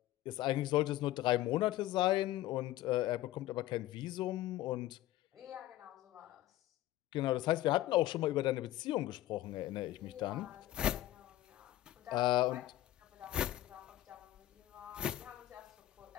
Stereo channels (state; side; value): quieter; right; 14.9 dB